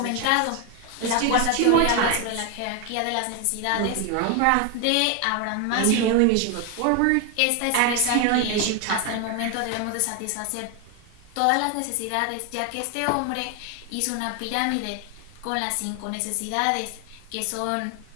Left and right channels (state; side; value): different; both; correlation 0.01